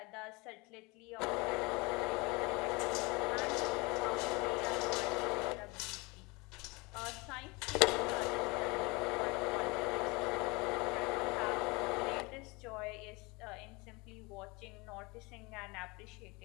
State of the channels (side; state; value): right; quieter; 26.1 dB